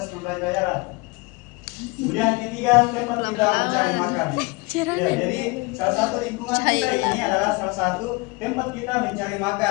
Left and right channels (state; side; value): quieter; right; 26.3 dB